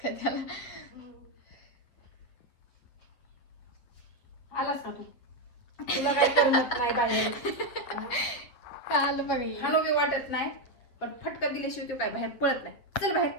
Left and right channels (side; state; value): right; late; 8.3 ms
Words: का त्याला आलास का तू? तुला काय करमत नाही बाहेर. का आलं बघा हे. हानो बी वाटत नाही पण फटका दिल्याशिवाय तू काय बाहेर पळत नाही. चल बाहेर